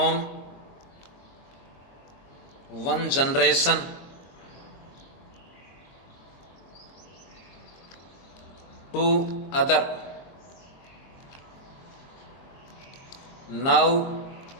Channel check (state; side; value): late; right; 22 ms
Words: one generation to other. Now